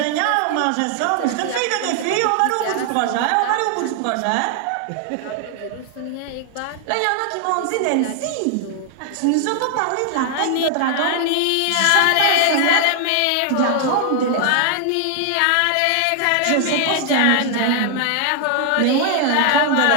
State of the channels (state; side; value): different; both; correlation 0.00